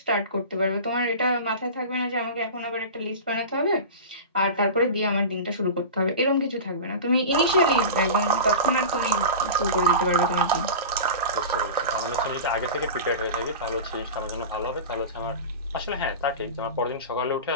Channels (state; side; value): inverted; both; correlation -0.30